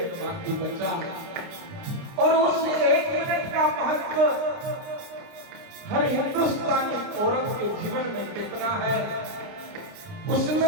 बाकी बचा और उस एक मिनट का महत्व हर हिंदुस्तानी औरत के जीवन में कितना है,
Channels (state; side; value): late; left; 29 ms